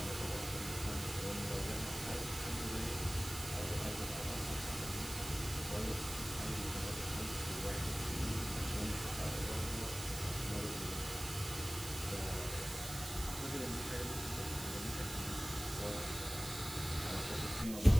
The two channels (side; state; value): right; noise; hiss, 9 dB below the sound